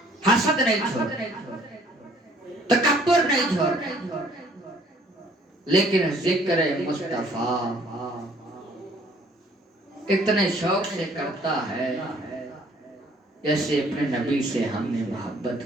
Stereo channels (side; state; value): both; normal; correlation 0.59